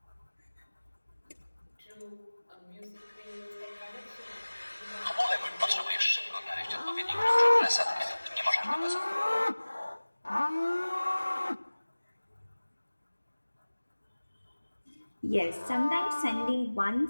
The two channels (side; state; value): both; inverted; correlation -1.00